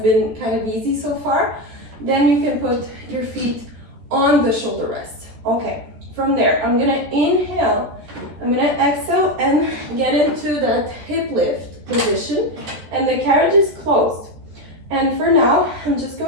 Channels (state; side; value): late; left; 14 ms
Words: kind of easy so far, then you can put your feet on the shoulder rest. Okay, from there, I'm gonna inhale, I'm gonna exhale and get into that hip lift position, and the carriage is closed. And for now, I'm just